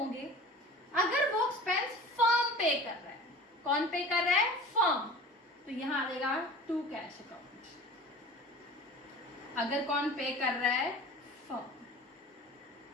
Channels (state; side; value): normal; both; correlation 0.40